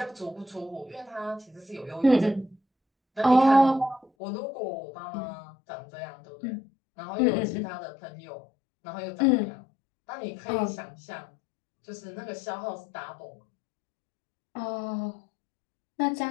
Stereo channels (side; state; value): right; drops out; at 4.1 s